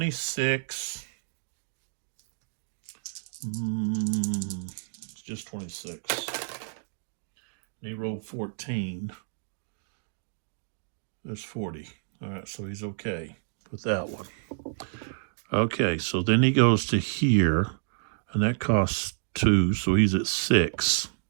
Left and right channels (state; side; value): silent; left; digital silence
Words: It's just 26. And he rolled 14. There's 40. All right, so he's okay with that one. Okay, so then he goes to here, and that costs 2, so he's at 6.